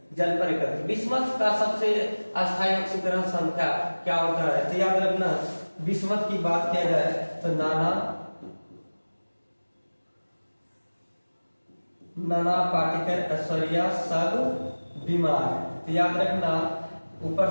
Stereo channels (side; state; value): both; inverted; correlation -1.00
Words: जल पर एकत्रित। बिस्मथ का सबसे अस्थायी ऑक्सीकरण संख्या क्या होता है? तो याद रखना, बिस्मथ की बात किया जाए तो नाना पार्टिकल ऐश्वर्या सब बीमार। तो याद रखना ऊपर